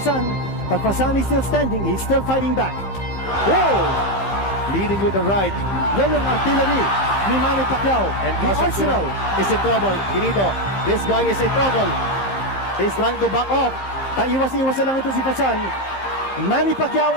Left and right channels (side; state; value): right; late; 15 ms